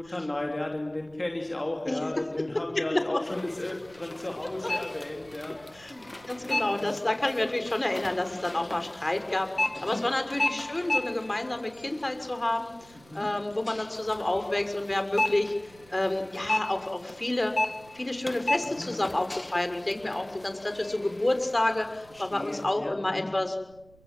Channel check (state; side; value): noise; right; rumble, 27 dB below the sound